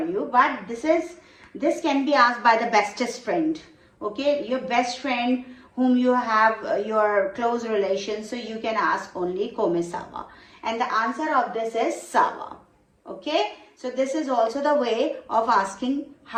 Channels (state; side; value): identical; both; correlation 1.00